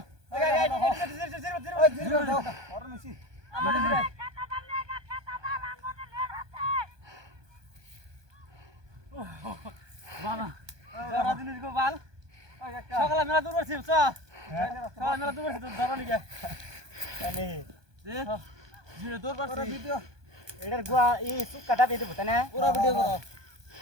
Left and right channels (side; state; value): left; late; 1.2 ms